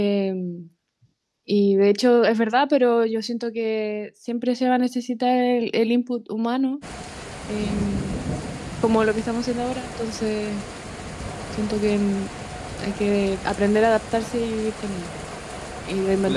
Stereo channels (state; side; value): identical; both; correlation 1.00